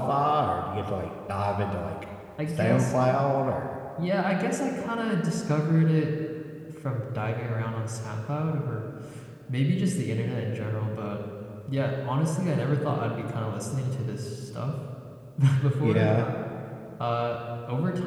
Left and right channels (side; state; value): both; identical; correlation 1.00